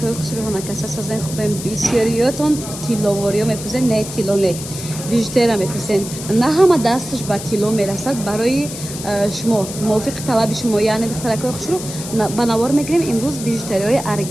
xushruhona kasa sazan xubem biseriyoton tiloworiyo mepuzen ne tilone. Bijutera mepuzen. Na hama dastش با تیلو میرسد برای شما موافق طلب شما یعنی دخترکای خوشرو بنوار میگیریم امروز بیژوتریای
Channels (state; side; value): noise; left; hiss, 10 dB below the sound